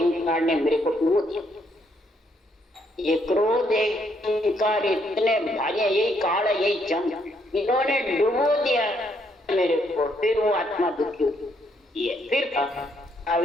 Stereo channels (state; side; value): normal; both; correlation 0.73